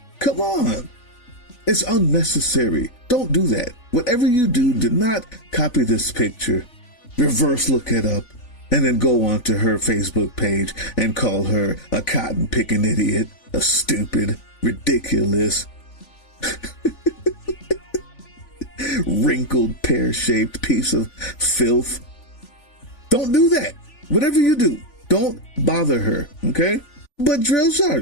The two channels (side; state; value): right; late; 3.5 ms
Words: Come on. It's unnecessary. Don't do that. Whatever you do, do not copy this picture, reverse look it up, and then go onto her Facebook page and call her a cotton-picking idiot, a stupid, ridiculous, wrinkled, pear-shaped piece of filth. Don't do that. Whatever you do, don't bother her, okay? But Drill